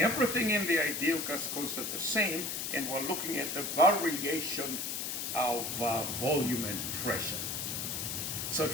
everything in the ideal gas constant the same, and we're looking at the variation of volume and pressure. So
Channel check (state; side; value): noise; left; hiss, 3 dB below the sound